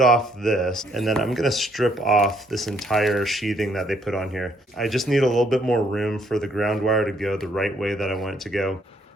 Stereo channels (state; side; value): normal; both; correlation 0.68